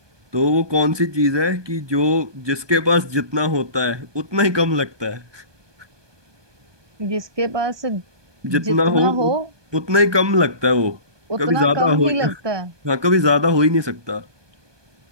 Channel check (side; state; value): left; late; 1.2 ms